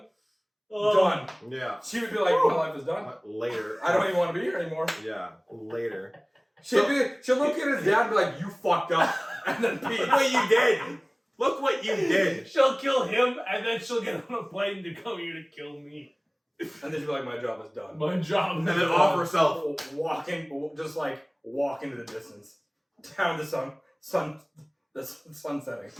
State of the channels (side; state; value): both; identical; correlation 1.00